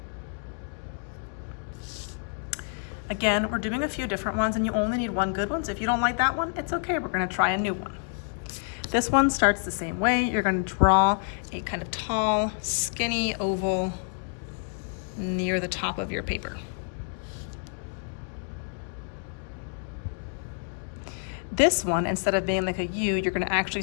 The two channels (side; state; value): right; silent; 59 dB below the other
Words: Again, we're doing a few different ones, and you only need one good one. So if you don't like that one, it's okay. We're gonna try a new one. This one starts the same way. You're gonna draw a kind of tall, skinny oval near the top of your paper. This one, instead of being like a U, you're gonna actually